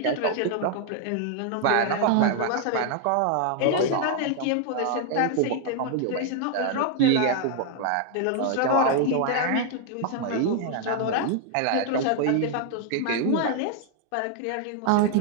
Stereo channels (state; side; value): different; both; correlation 0.00